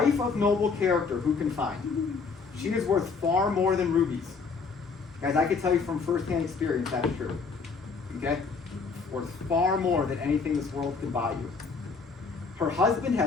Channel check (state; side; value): quieter; right; 4.9 dB